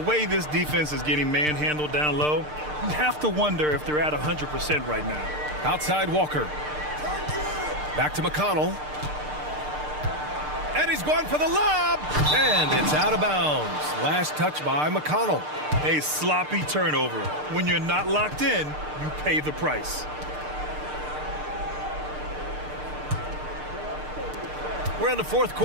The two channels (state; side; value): late; left; 6.6 ms